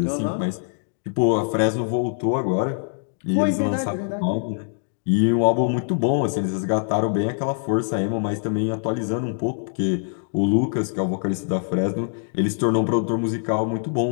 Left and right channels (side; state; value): right; silent; digital silence